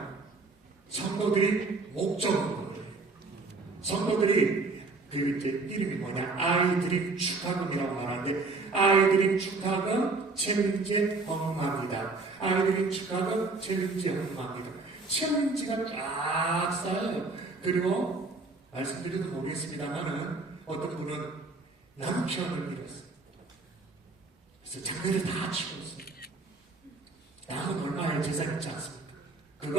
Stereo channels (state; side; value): quieter; left; 3.7 dB